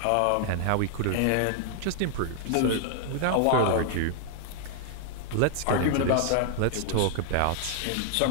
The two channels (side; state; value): both; different; correlation -0.01